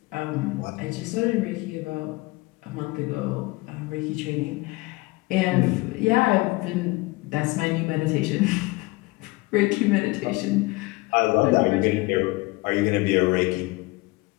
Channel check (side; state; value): right; quieter; 22.6 dB